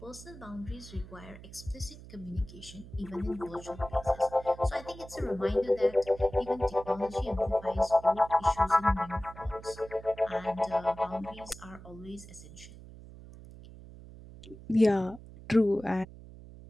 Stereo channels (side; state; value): right; noise; hum, 17 dB below the sound